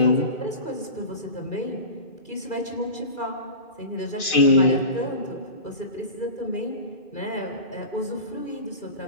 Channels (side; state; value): right; late; 2.3 ms